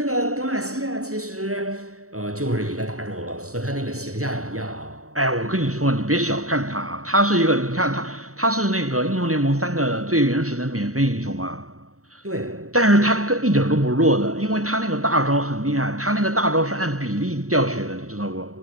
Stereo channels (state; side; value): late; left; 0.65 ms